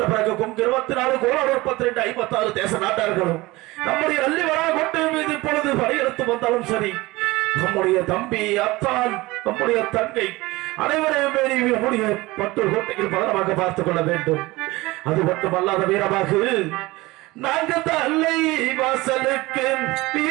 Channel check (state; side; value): quieter; left; 20.8 dB